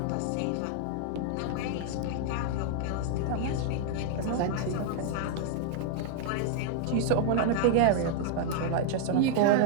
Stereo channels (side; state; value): both; different; correlation 0.00